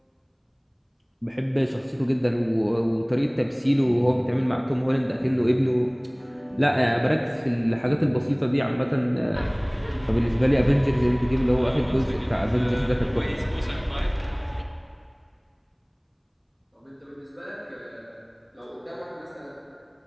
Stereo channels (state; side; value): identical; both; correlation 1.00